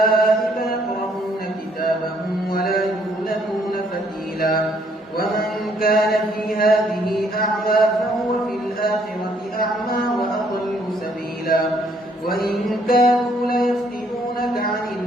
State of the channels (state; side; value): normal; both; correlation 0.67